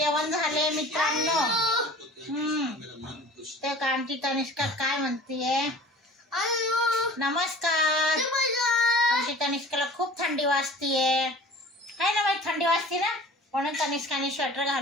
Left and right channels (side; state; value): both; normal; correlation 0.43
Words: झाले मित्रांनो. ते का आमची तनिष्का काय म्हणतीये? नमस्कार. आमची तनिष्काला खूप थंडी वाजतीये, है ना बाई? थंडी वाजते ना, म्हणून तनिष्काने स्वेटर